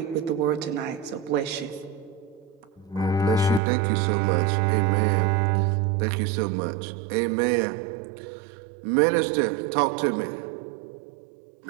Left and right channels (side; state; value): left; drops out; at 3.6 s